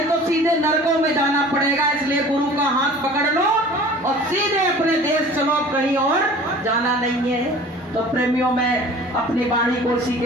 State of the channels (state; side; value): normal; both; correlation 0.45